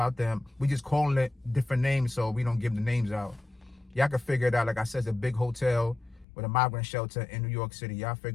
them. We just calling it different names, so we don't give the names out. Y'all can figure it out. Like I said, it's a big hotel with a migrant shelter in New York City. Y'all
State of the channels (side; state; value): right; drops out; at 6.2 s